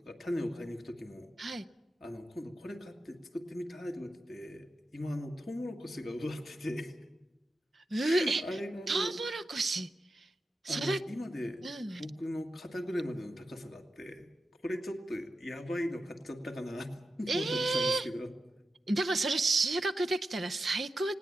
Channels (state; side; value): normal; both; correlation 0.91